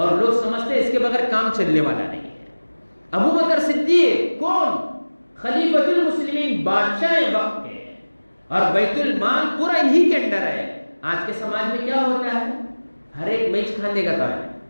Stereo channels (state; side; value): inverted; both; correlation -1.00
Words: لوگ سمجھتے ہیں اس کے بغیر کام چلنے والا نہیں ہے۔ ابو بکر صدیق کون؟ خلیفۃ المسلمین، بادشاہ وقت کے، اور بیت المال پورا انہی کے اندر ہے۔ آج کے سماج میں کیا ہوتا ہے، ہر ایک میچ کھانے کا کام ہے،